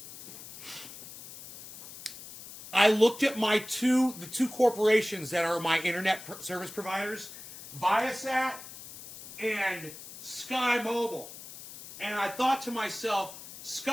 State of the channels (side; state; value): left; noise; hiss, 14 dB below the sound